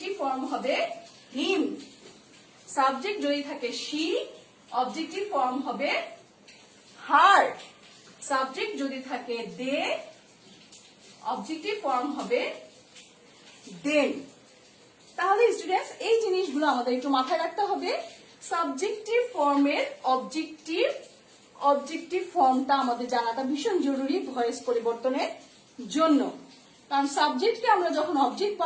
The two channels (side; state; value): both; identical; correlation 1.00